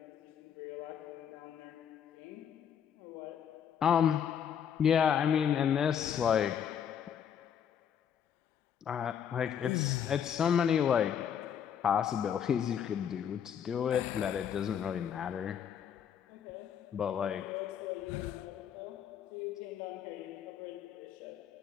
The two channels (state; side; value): quieter; right; 8.4 dB